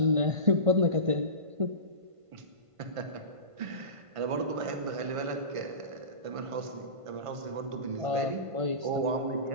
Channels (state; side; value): late; left; 1.5 ms